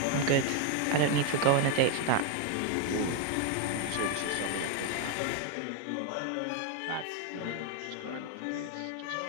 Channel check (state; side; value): different; both; correlation 0.01